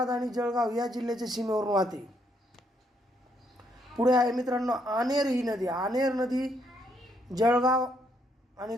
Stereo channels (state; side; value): normal; both; correlation 0.73